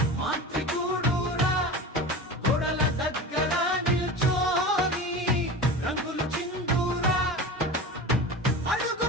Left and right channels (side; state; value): both; normal; correlation 0.31